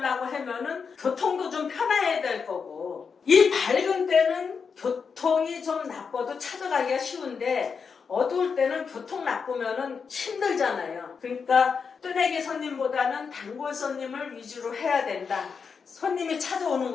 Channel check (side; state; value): right; quieter; 5.8 dB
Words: 하면은 교통도 좀 편해야 될 거고 이 밝은 때는 교통이 좀 나빠도 찾아가기가 쉬운데 어두울 때는 교통 나쁘면은 힘들잖아요. 그러니까 뜨내기 손님보다는 단골 손님을 위주로 해야 된다. 손님이 찾아오는